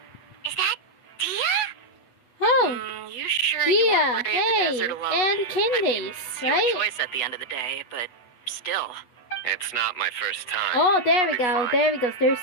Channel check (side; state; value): right; late; 8.2 ms